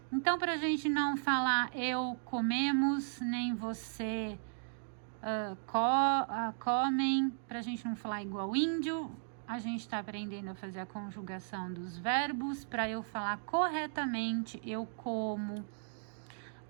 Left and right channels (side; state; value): left; silent; digital silence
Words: Então, pra gente não falar eu comemos, nem você comem, pra gente não falar igual índio, a gente está aprendendo a fazer a conjugação dos verbos para eu falar corretamente. Eu como,